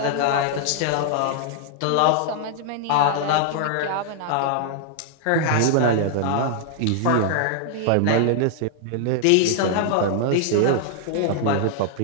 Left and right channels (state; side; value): different; both; correlation -0.01